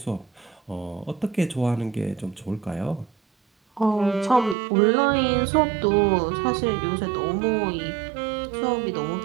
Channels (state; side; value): drops out; left; at 4.5 s